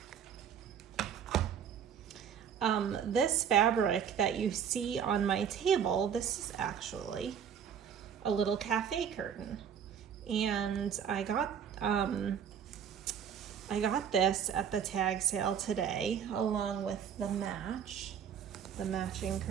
This fabric that you see on my table, this is actually a little cafe curtain. And I got this at the tag sale today, along with the matching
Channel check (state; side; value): quieter; left; 8.0 dB